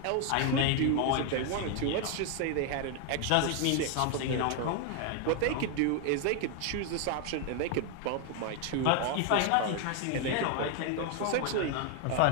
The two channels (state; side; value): different; both; correlation 0.01